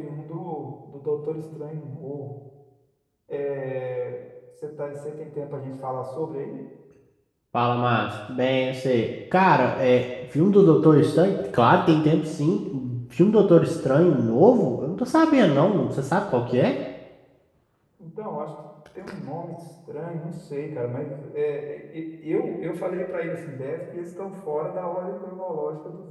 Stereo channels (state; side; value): identical; both; correlation 1.00